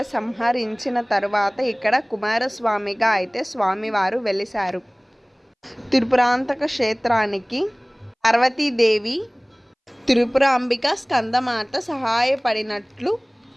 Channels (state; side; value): identical; both; correlation 1.00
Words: సంహరించిన తర్వాత ఇక్కడ కుమారస్వామిగా అయితే స్వామివారు వెలిశారు. త్రిపురాంతక క్షేత్రానికి పార్వతీదేవి, త్రిపురాంబిక, స్కందమాత సహాయపడినట్లు